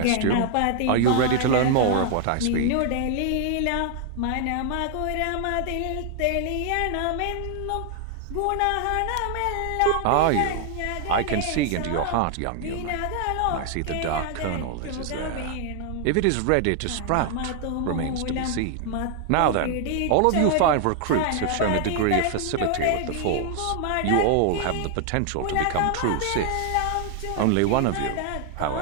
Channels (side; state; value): both; different; correlation 0.00